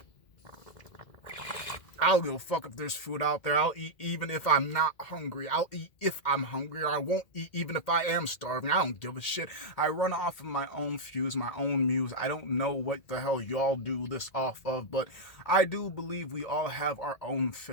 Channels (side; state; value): right; late; 2.1 ms